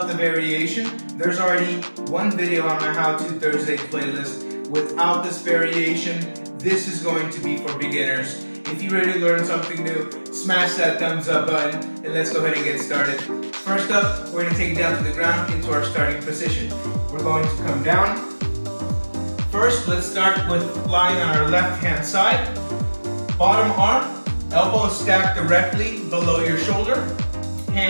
the variation. There's already one video on my How To Thursday playlist without this variation. This is going to be for beginners. If you're ready to learn something new, smash that thumbs up button and let's go ahead and get started. First up, we're going to take it down to the ground into our starting position. We're going to come down. First, let's start with lying on our left hand side. Bottom arm, elbow stacked directly below your shoulder.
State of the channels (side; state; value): both; inverted; correlation -1.00